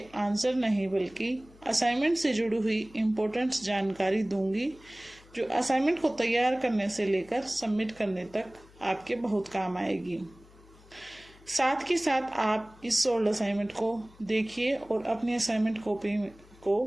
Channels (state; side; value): noise; left; hum, 25 dB below the sound